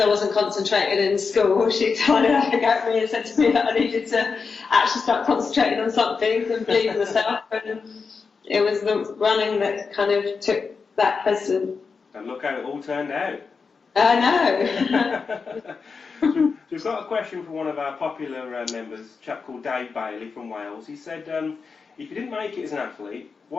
wasn't concentrated in school, she tried to have a go at me and said to me that I needed to actually start concentrating on something and believe in myself, and it was the running that kind of took that precedent. And look how it all turned out. I know. So we've got a question from one of our popular members, a chap called Dave Bailey from Wales. He said, if you didn't make it as an athlete,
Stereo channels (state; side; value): quieter; right; 5.1 dB